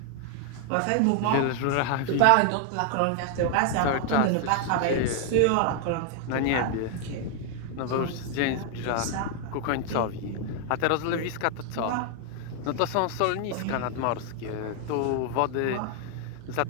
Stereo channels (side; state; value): both; different; correlation 0.00